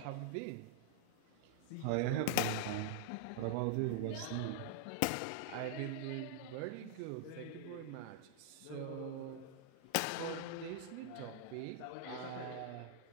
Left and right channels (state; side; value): different; both; correlation -0.01